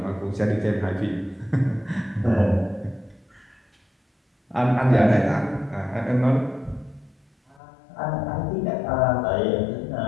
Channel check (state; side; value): drops out; right; at 7.6 s